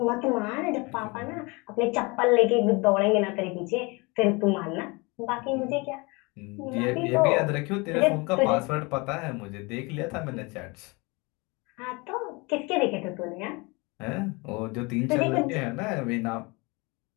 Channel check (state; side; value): quieter; right; 27.1 dB